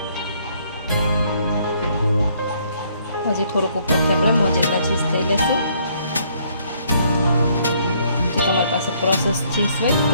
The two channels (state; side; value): inverted; both; correlation -0.67